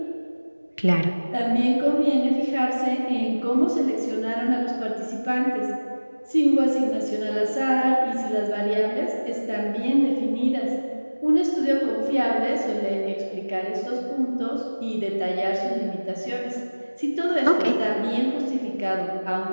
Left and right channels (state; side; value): inverted; both; correlation -1.00